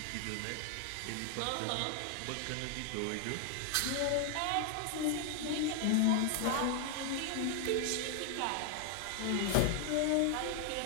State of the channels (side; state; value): both; different; correlation 0.00